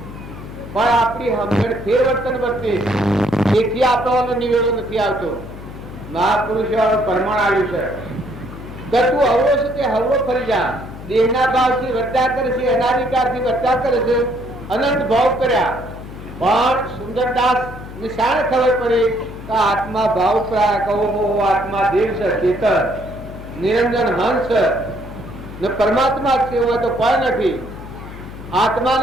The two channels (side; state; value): left; noise; hum, 13 dB below the sound